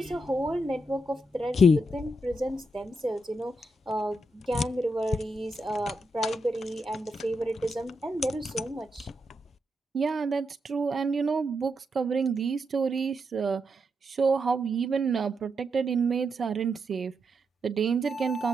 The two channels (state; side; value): normal; both; correlation 0.83